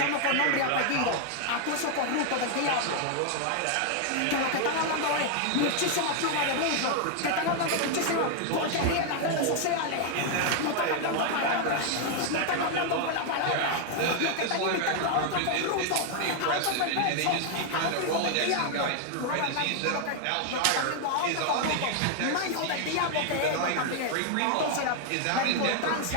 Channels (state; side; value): different; both; correlation 0.00